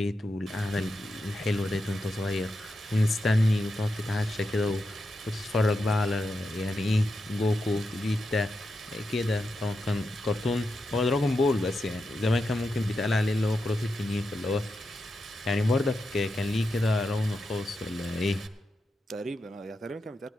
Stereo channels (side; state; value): both; normal; correlation 0.87